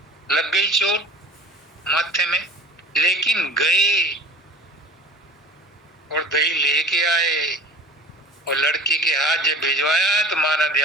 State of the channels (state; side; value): normal; both; correlation 0.41